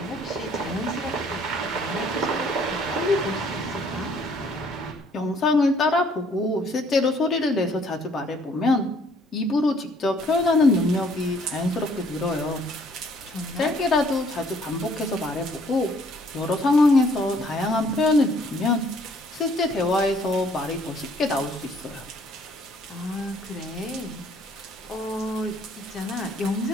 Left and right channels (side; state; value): both; normal; correlation 0.62